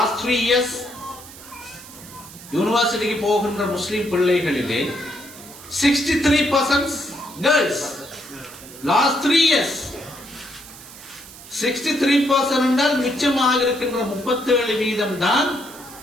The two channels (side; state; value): right; noise; hiss, 17 dB below the sound